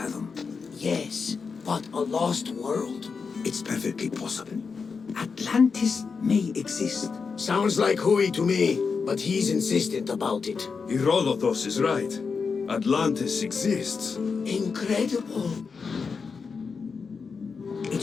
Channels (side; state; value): right; quieter; 5.3 dB